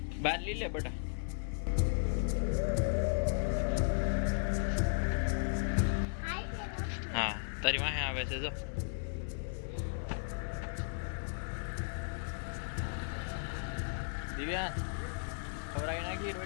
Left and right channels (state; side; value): silent; right; 54 dB below the other